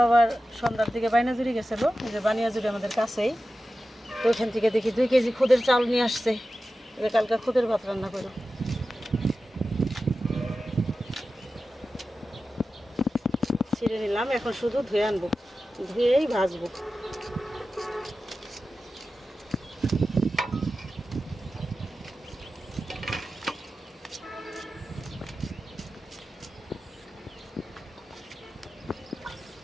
আবার সন্ধ্যার দিকে বাইনাজুরি গেছিলো, এই যে বানিয়াজুরি আমাদের কাছেই, তো ওইখান থেকে দেখি 2 কেজি খুদের চাল নিয়ে আসছে, এটা কালকে খুদের ভাত রান্না করো। ছিঁড়ে নিলাম, এখন শুধু ধুয়ে আনবো, ধুয়েই ভাজবো।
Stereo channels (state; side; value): normal; both; correlation 0.94